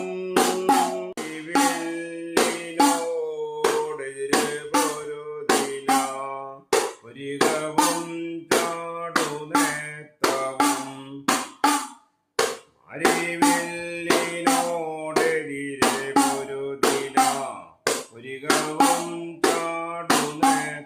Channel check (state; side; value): identical; both; correlation 1.00